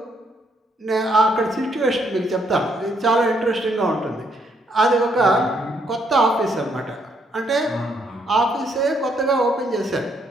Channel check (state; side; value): normal; both; correlation 0.72